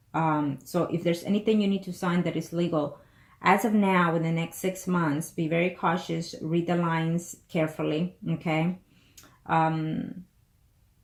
So if there's anything you need to sign that is legal, as of now, in the next 6 months, be very cautious. Read the lines carefully, okay?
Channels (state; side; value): identical; both; correlation 1.00